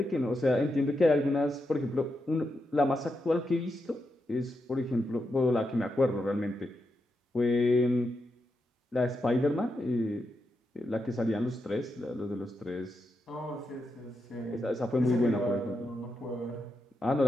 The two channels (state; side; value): normal; both; correlation 0.85